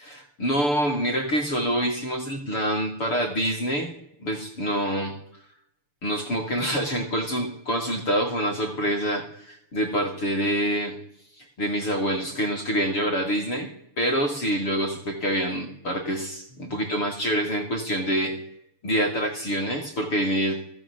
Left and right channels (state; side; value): late; right; 6.8 ms